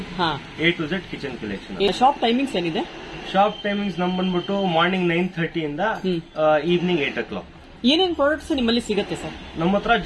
A to Z kitchen collection. Shop timings ಏನಿದೆ? ಶಾಪ್ ಟೈಮಿಂಗ್ಸ್ ನಮ್ ಬಂದ್ಬಿಟ್ಟು ಮಾರ್ನಿಂಗ್ 9:30 ಇಂದ ಈವ್ನಿಂಗ್ 8 o'clock. ಏನೇನ್ ಪ್ರಾಡಕ್ಟ್ಸ್ ನಿಮ್ಮಲ್ಲಿ ಸಿಗುತ್ತೆ ಸರ್? ನಮ್ಮ ಹತ್ರ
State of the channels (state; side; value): identical; both; correlation 1.00